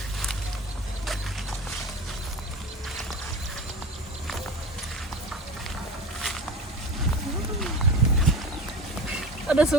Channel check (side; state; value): both; normal; correlation 0.32